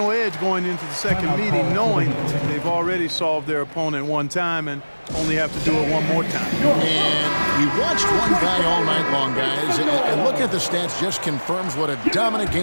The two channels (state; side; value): inverted; both; correlation -1.00